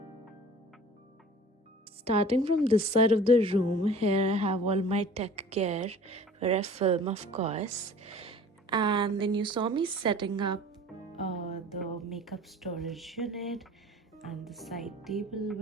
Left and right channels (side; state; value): both; normal; correlation 0.45